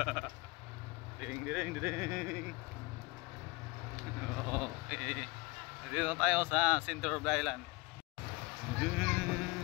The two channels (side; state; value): right; quieter; 24.6 dB